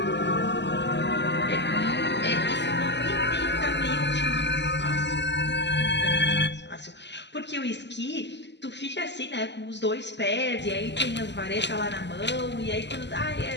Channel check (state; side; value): late; right; 0.51 ms